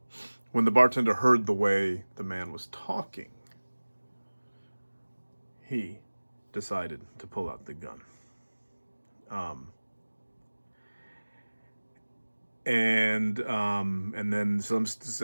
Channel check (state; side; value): inverted; both; correlation -1.00